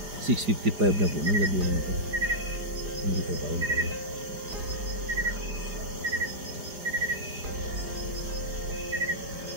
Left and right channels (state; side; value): late; left; 4.9 ms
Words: $6:55 na po ng gabi na ito. Hindi pa pa rin tayo.